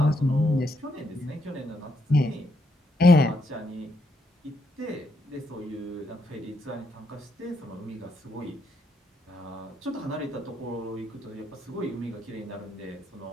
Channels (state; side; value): normal; both; correlation 0.76